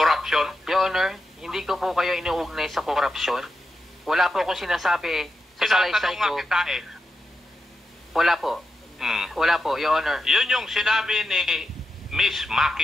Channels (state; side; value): normal; both; correlation 0.87